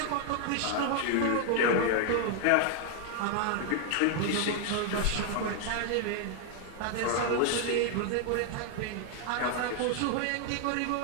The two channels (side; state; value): both; different; correlation 0.00